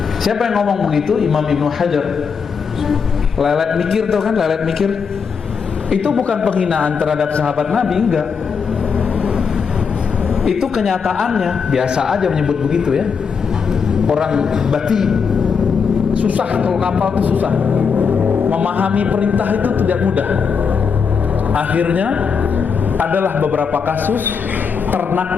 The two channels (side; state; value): right; quieter; 6.0 dB